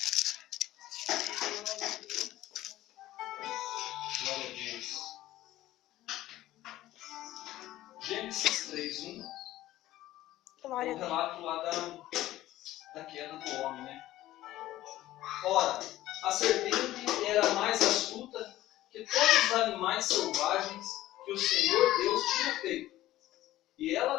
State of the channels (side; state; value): right; quieter; 15.2 dB